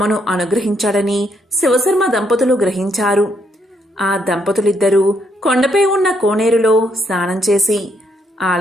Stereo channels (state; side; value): normal; both; correlation 0.74